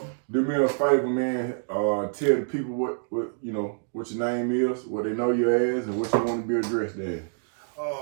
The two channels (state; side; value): silent; left; digital silence